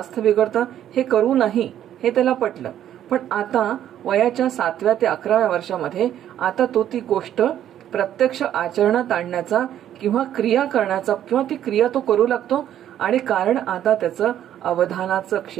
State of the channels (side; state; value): left; quieter; 11.0 dB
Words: बिघडतं, हे करू नाही, हे त्याला पटलं. पण आता वयाच्या 7व्या ते 11व्या वर्षामध्ये आता तो ती गोष्ट प्रत्यक्ष आचरणात आणण्याचा किंवा क्रिया करण्याचा किंवा ती क्रिया तो करू लागतो. आणि कारण आता त्याचं अवधानाचं